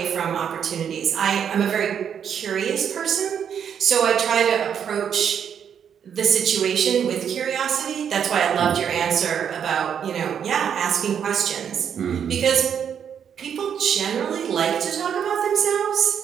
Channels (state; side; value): quieter; left; 8.1 dB